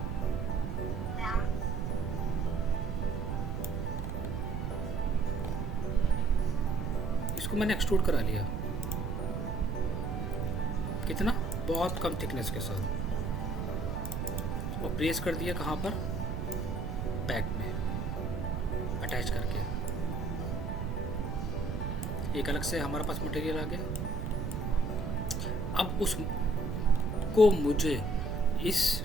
इसको मैंने एक्सट्रूड करा लिया, कितना, बहुत कम थिकनेस के साथ, और प्रेस कर दिया कहाँ पर, बैक में अटैच करके। एक अलग से हमारे पास मटेरियल आ गया। अब उसको मुझे इस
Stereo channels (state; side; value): noise; right; rumble, 3 dB below the sound